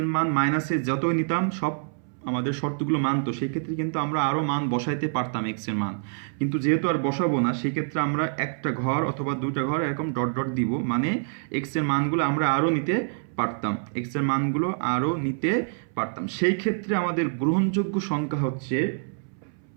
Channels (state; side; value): silent; left; 61 dB below the other